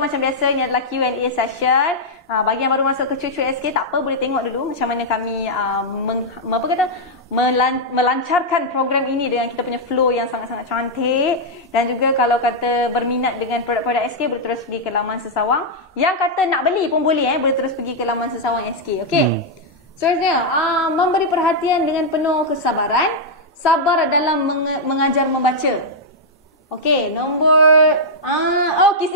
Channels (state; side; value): normal; both; correlation -0.05